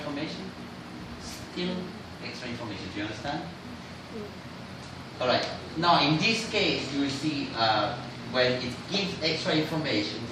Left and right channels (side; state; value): both; identical; correlation 1.00